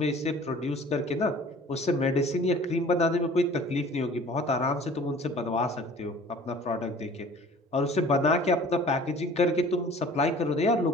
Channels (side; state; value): both; normal; correlation 0.48